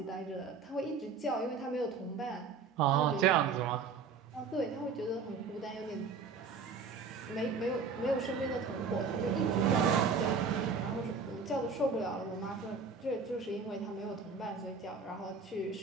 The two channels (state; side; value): quieter; left; 5.1 dB